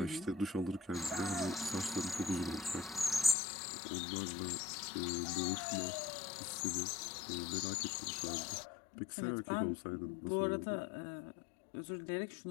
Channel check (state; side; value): drops out; right; at 3.4 s